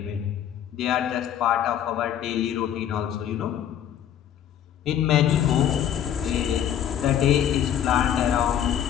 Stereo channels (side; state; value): right; quieter; 10.1 dB